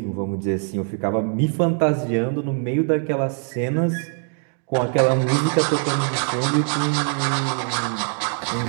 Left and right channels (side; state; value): left; quieter; 38.8 dB